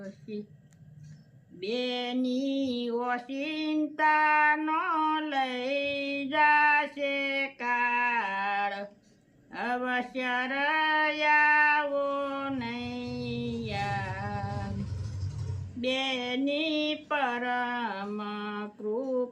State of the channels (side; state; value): both; identical; correlation 1.00